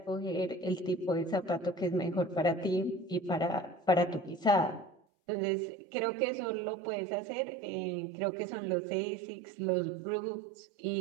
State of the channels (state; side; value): drops out; left; at 5.0 s